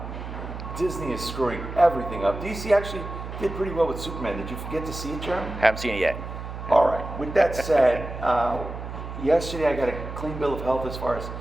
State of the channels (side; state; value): right; noise; hum, 8 dB below the sound